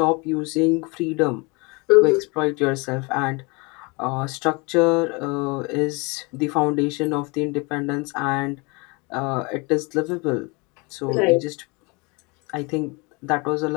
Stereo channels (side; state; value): right; quieter; 28.6 dB